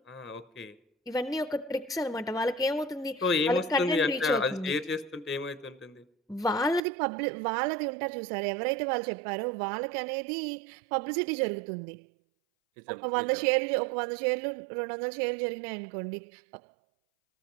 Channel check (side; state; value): left; drops out; at 6.8 s